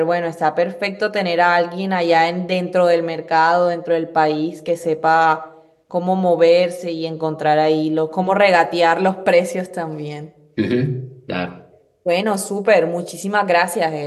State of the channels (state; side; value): identical; both; correlation 1.00